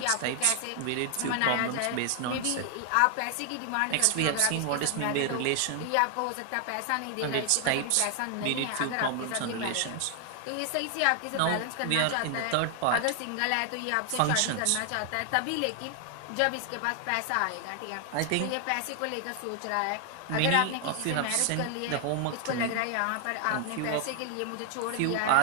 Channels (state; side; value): different; both; correlation 0.00